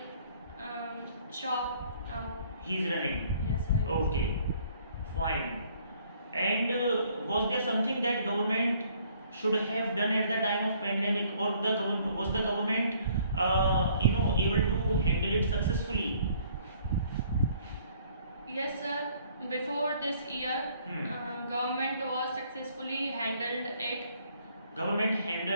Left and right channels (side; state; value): both; inverted; correlation -0.61